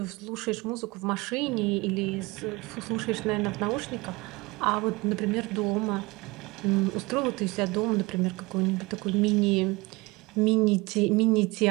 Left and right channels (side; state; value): left; quieter; 23.8 dB